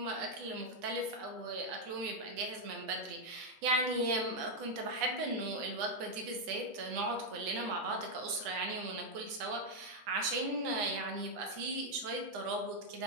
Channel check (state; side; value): late; left; 8.2 ms